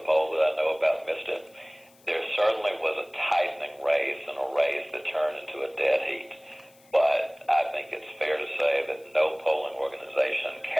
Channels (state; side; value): noise; left; hiss, 29 dB below the sound